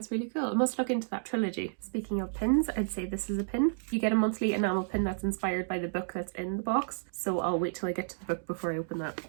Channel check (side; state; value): left; silent; digital silence